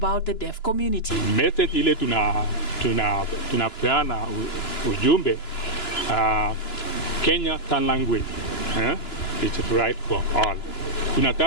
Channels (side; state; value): right; late; 2.9 ms